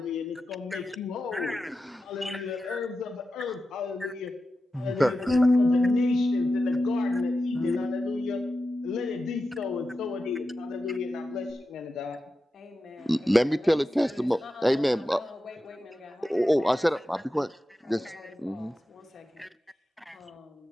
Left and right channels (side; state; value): both; normal; correlation 0.92